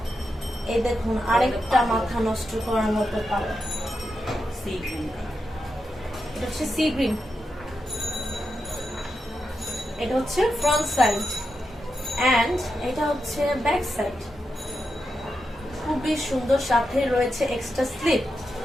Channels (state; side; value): normal; both; correlation 0.87